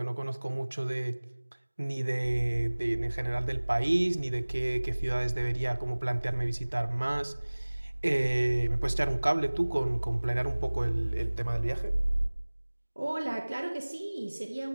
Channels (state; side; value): inverted; both; correlation -1.00